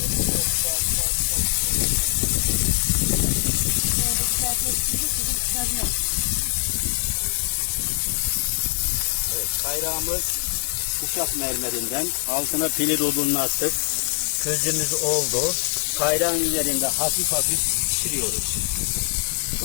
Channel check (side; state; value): right; silent; digital silence